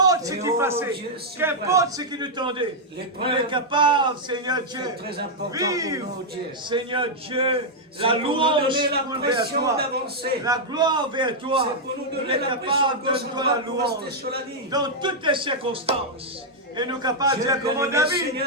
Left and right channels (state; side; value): normal; both; correlation -0.04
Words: ce Et qui oh, passait, Dieu suprême. qu'importe ce qui nous tendait, L'épreuve, on est capable, Seigneur Dieu, c'est très important pour vivre, nous, Dieu. Seigneur Dieu, C'est la pour nous louange donner la vers pression toi, d'avancer. la gloire vers toi. C'est pour nous On donner est la pression capable de gauche toi la droite pour rester louange sur la ligne. dans toutes les circonstances. Et nous capables de Dieu dire comme bien-aimé, David, Seigneur,